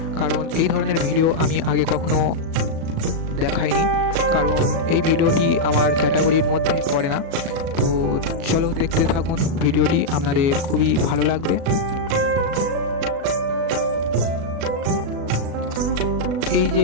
কারণ এই ধরনের ভিডিও আমি আগে কখনো দেখাইনি, কারণ এই ভিডিওটি আমার ক্যাটাগরির মধ্যে পড়ে না। তো চলো দেখতে থাকুন ভিডিওটি, আপনাদের খুবই ভালো লাগবে। এই যে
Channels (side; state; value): left; late; 37 ms